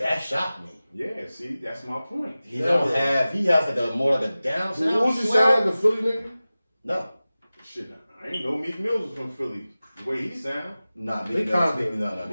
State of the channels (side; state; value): both; inverted; correlation -0.97